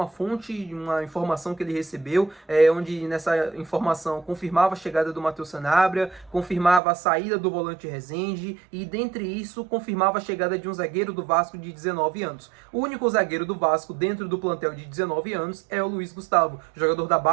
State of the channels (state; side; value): drops out; left; at 6.8 s